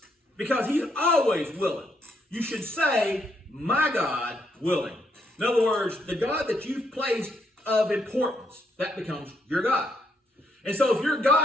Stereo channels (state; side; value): normal; both; correlation 0.75